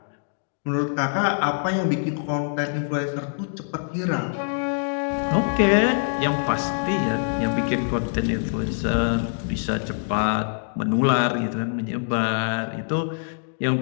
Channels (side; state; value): right; silent; digital silence